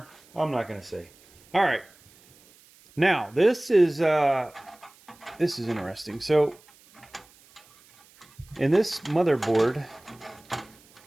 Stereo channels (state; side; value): noise; right; hiss, 28 dB below the sound